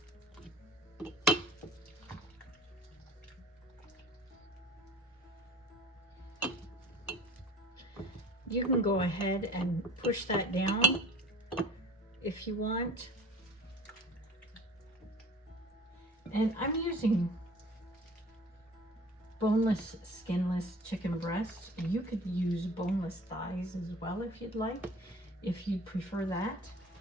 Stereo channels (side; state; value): both; normal; correlation 0.44